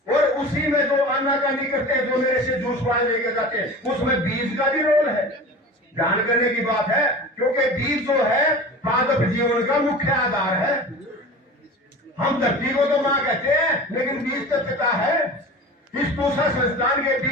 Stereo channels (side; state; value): both; normal; correlation 0.35